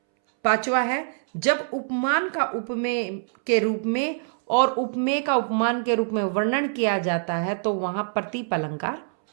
पांचवा है जब उपमान का उपमेय के रूप में और उपमेय का उपमान के रूप में वर्णन किया जाता है तो वहां प्रतीप अलंकार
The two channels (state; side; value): silent; left; 62 dB below the other